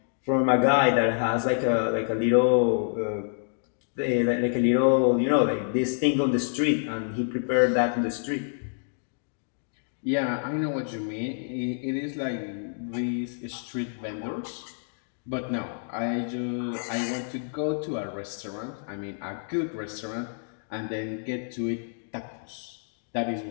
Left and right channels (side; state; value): right; silent; digital silence